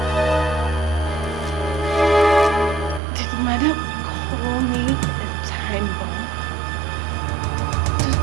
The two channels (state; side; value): drops out; left; at 3.0 s